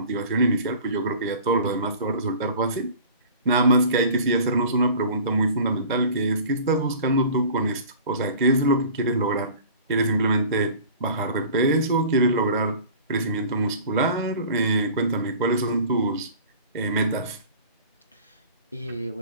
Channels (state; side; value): inverted; both; correlation -0.43